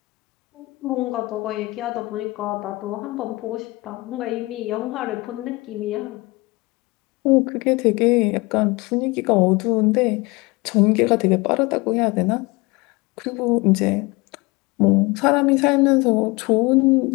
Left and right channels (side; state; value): right; quieter; 23.6 dB